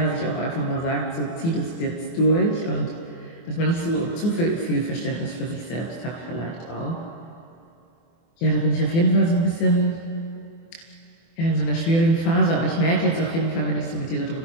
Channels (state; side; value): late; right; 24 ms